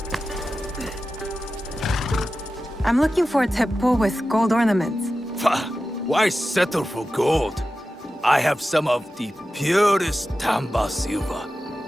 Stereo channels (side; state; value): both; normal; correlation 0.93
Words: I'm looking for a teppo with gold ornaments. Why settle for gold? I have some of the purest Tamba silver.